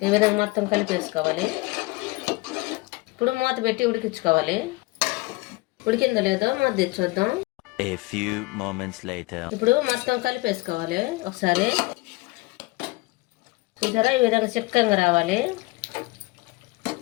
ఈ విధంగా మొత్తం కలిపేసుకోవాలి. ఇప్పుడు మూత పెట్టి ఉడికించుకోవాలి. ఉడికిందో లేదో మూత తెచ్చి చూద్దాం. ఇప్పుడు మొత్తం కలిపేసుకోవాలి ఒకసారి. చూసారా, ఈ విధంగా చిక్కంగా రావాలి.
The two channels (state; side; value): quieter; right; 23.2 dB